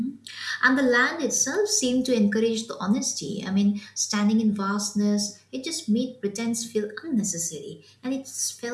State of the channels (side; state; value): both; identical; correlation 1.00